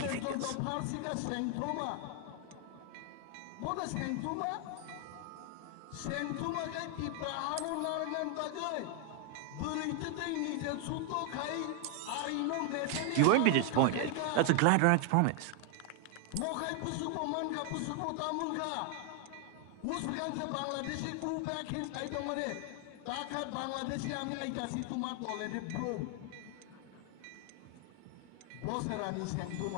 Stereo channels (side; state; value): both; different; correlation 0.00